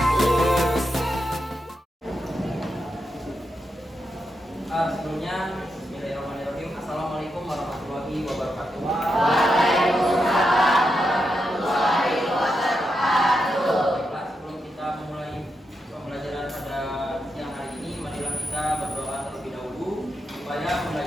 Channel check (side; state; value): both; normal; correlation 0.85